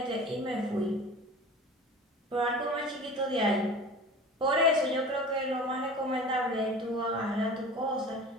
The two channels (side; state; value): both; normal; correlation 0.38